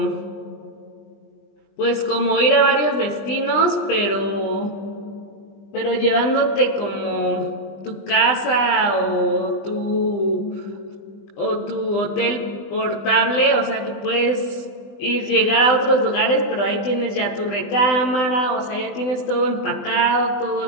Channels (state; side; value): late; right; 20 ms